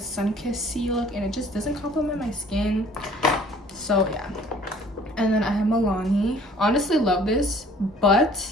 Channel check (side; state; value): both; normal; correlation 0.54